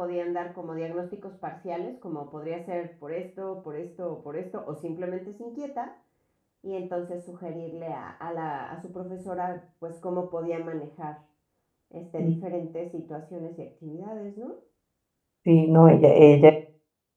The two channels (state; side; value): identical; both; correlation 1.00